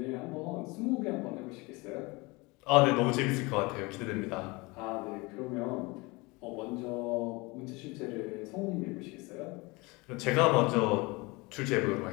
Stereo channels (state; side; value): quieter; right; 25.0 dB